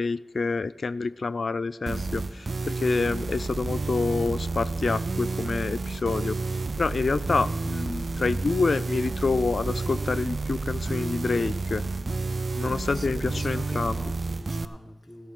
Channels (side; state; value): both; normal; correlation 0.92